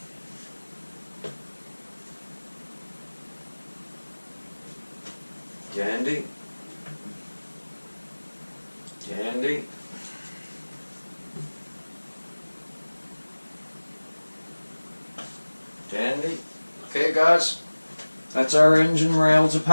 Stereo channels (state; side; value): inverted; both; correlation -1.00